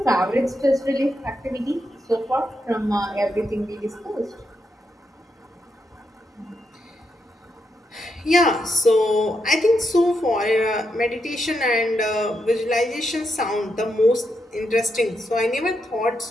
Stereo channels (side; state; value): both; normal; correlation 0.82